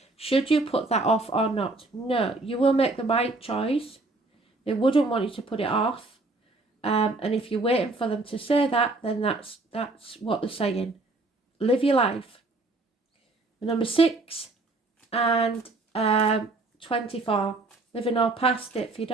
Should you put that off or not? No, you will make the right choice. They wouldn't want you to put it off. And if you're waiting for them to say that, then that's what they're saying. Live your life. Number 6 and 24. Living all past it,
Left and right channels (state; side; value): quieter; left; 3.1 dB